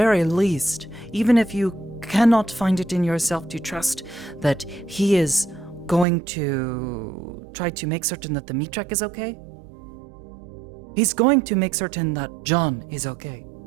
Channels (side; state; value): left; drops out; at 6.1 s